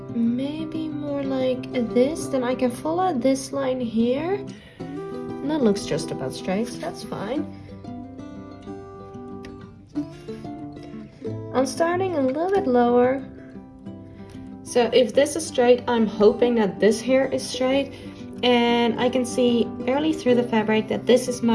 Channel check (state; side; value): identical; both; correlation 1.00